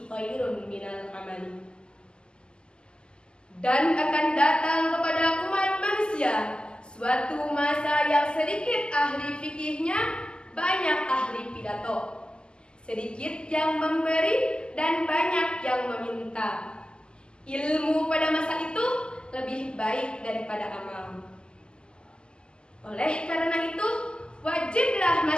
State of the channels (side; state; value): right; late; 0.048 ms